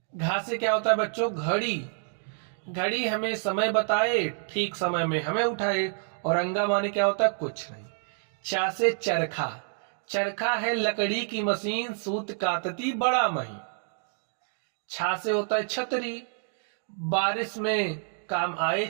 घा से क्या होता है बच्चों? घड़ी। घड़ी हमें समय बताए, ठीक समय में हमें उठाए। और अंगा माने क्या होता है? कुछ नहीं। चा से चरखा। चरखा है लकड़ी की मशीन, सूत कातती बड़ा महीन। छा से होता है छतरी। बारिश में काम आए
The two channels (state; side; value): silent; left; 59 dB below the other